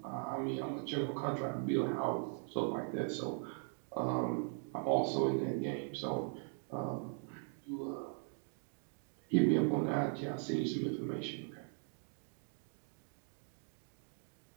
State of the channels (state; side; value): silent; left; 51 dB below the other